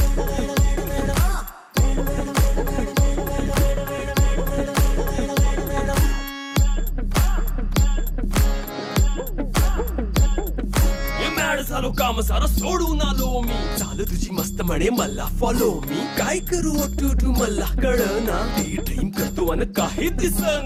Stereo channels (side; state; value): both; identical; correlation 1.00